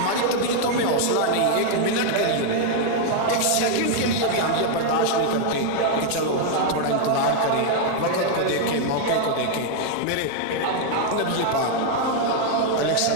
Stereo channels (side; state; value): both; different; correlation 0.00